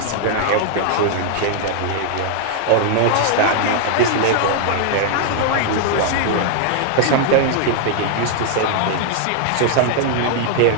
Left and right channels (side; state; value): both; different; correlation 0.00